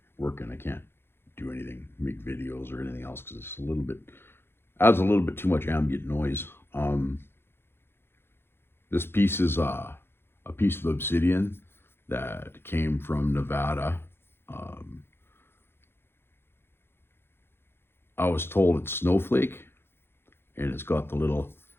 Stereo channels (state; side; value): late; right; 0.11 ms